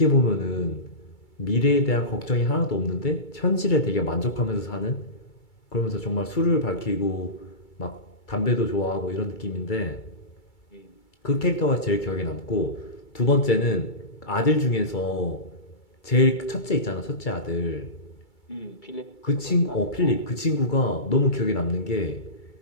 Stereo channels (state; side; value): late; right; 2.3 ms